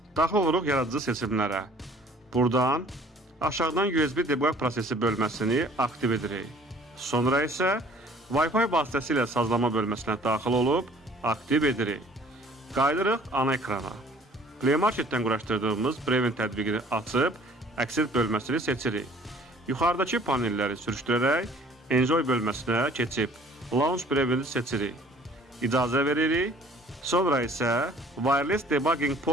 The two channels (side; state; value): both; normal; correlation 0.53